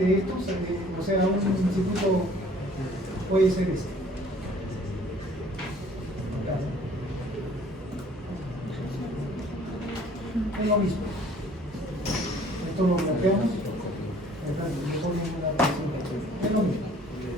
a esto, o sea, un circuito puede ser este. Acá. Es lo mismo. Esto lo bloqueamos. Acá le ponen una tensión. Es lo mismo.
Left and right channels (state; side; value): normal; both; correlation 0.55